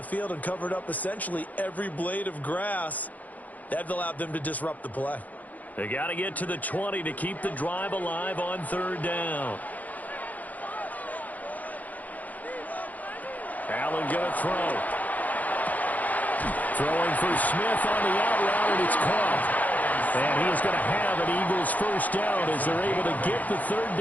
field and covered up essentially every blade of grass. That allowed them to disrupt the play. They got to get to the 20 to keep the drive alive on third down. Allen going to throw. Throwing for Smith on the out route, and it's caught. And he is going to have an Eagles first down as they're able to get the third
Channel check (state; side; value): late; right; 0.078 ms